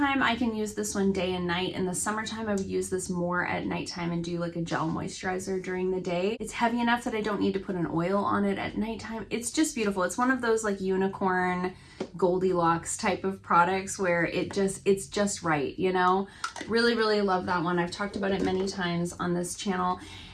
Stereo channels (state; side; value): identical; both; correlation 1.00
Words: I can use this one day and night. In the summertime, I would use this more at nighttime and do like a gel moisturizer during the day. It's heavy enough that I don't need to put an oil on it at nighttime. It's just beautiful. It's one of those like unicorn Goldilocks type of products where it's just right, you know? Really, really love that one. I've talked about it many times on this channel.